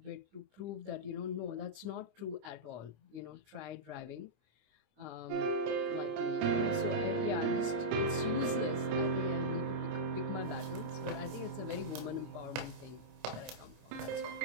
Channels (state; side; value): late; left; 26 ms